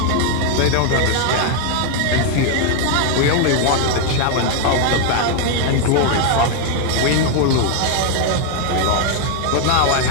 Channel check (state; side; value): different; both; correlation 0.00